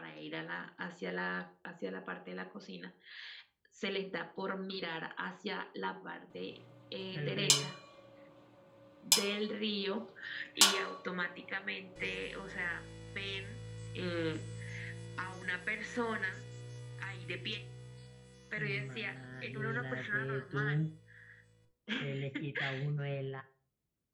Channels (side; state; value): both; identical; correlation 1.00